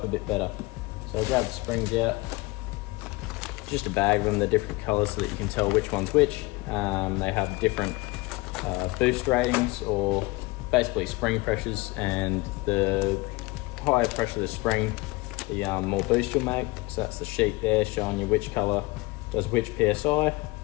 a bit better. So I'll grab the springs out, just a bag of them, they're different colours so that you can tell which one's which. They have different boost ratings, or basically spring pressures, and the higher pressure the spring, the more boost you'll make. So that's the sheet there showing you which colour does which PSI.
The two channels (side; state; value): right; quieter; 23.2 dB